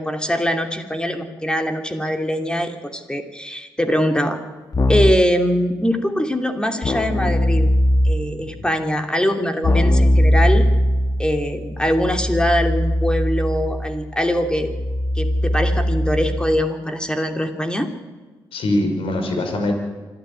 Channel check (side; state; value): both; normal; correlation 0.90